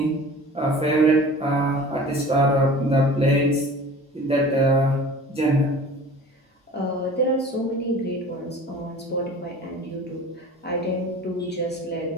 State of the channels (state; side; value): normal; both; correlation 0.42